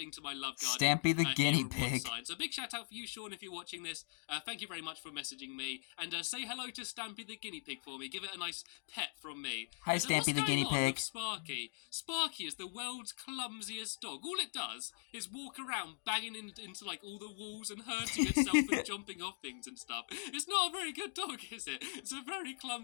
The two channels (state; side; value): silent; right; 51 dB below the other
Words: to my love garden. Stampy the guinea pig. So big shout out for you, Sean, if you're watching this. Thank you very much for messaging me. And say hello to Stampy the guinea pig for me. Give it a nice pet from me. Hi, Stampy the guinea pig. Sparky. Sparky is the world's clumsiest dog. All it does is walk around banging into like all the walls and hurting itself and jumping off things and stuff. It's not a very good dog, is it? It's a very